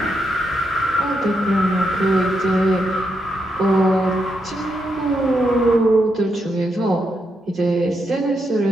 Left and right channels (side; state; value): both; normal; correlation 0.82